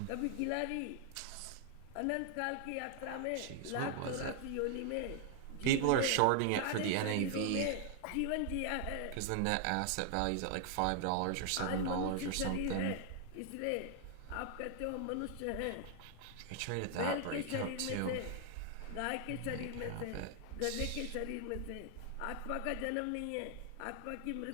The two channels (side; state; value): both; different; correlation 0.00